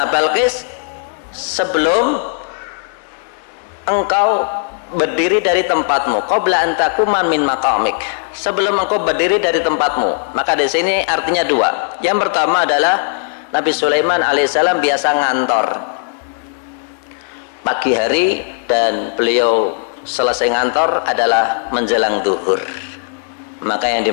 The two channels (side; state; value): right; silent; 68 dB below the other